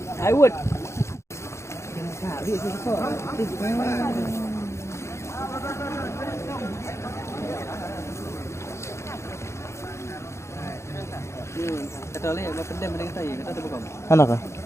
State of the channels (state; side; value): late; right; 0.13 ms